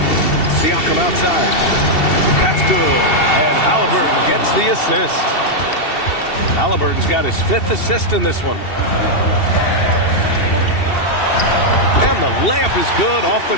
Siakam outside. That's good. And Halliburton gets the assist. Halliburton's got his 5th assist in this one. And the layup is good off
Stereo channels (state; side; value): late; right; 2.7 ms